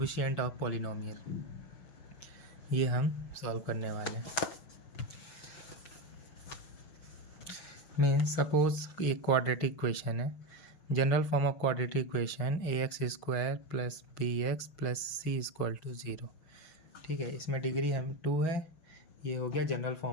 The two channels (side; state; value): right; late; 6.1 ms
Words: of polynomial, ये हम सॉल्व करने वाले हैं। मीन्स सपोज एक क्वाड्रेटिक इक्वेशन है, general form of quadratic equation ax² plus bx plus c equal to 0। ठीक है, इसमें डिग्री हम 2 है, ये हो गया general